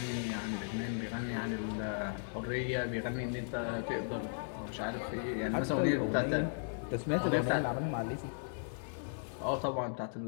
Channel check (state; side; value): silent; right; digital silence